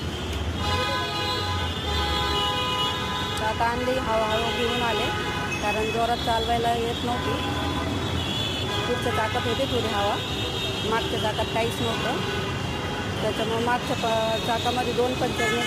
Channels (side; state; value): both; identical; correlation 1.00